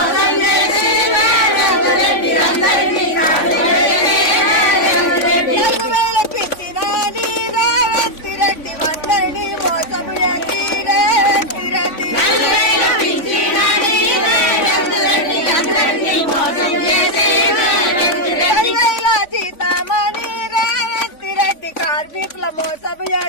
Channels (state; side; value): late; right; 3.5 ms